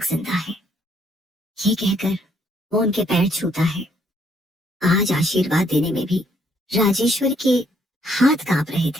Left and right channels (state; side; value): normal; both; correlation 0.69